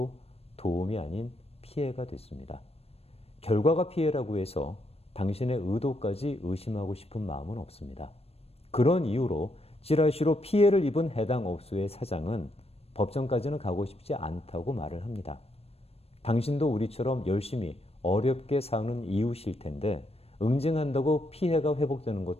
도움이 아닌 피해가 됐습니다. 결과가 피해라고 해서 당신의 의도까지 의심하고 싶은 마음은 없습니다. 그런 이유로 찌라시로 피해를 입은 해당 업소의 사장은 법정까지는 가고 싶지 않다고 말을 합니다. 당신도 우리처럼 열심히 어렵게 사는 이웃일 텐데 응징한다고 피해가 회복되는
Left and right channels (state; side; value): late; right; 0.29 ms